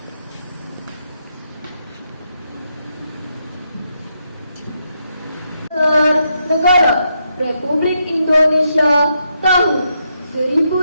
Negara Republik Indonesia tahun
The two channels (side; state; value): both; inverted; correlation -0.80